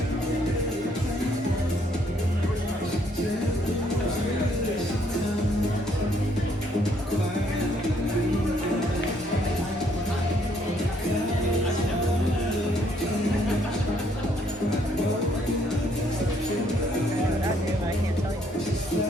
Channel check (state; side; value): normal; both; correlation 0.68